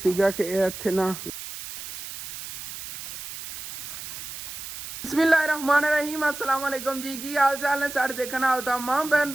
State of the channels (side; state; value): right; noise; hiss, 10 dB below the sound